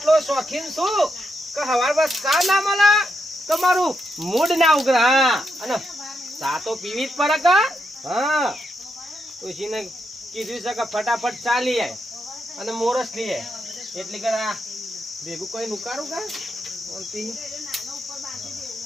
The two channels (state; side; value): normal; both; correlation 0.83